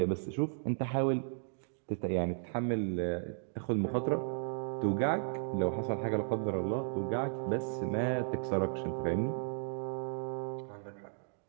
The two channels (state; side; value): silent; left; digital silence